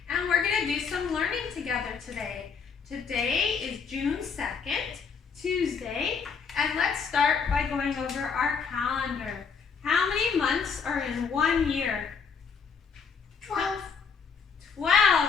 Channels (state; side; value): quieter; right; 6.0 dB